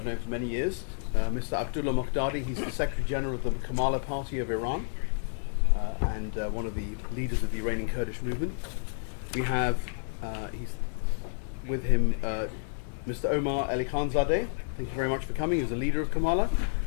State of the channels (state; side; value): silent; right; 58 dB below the other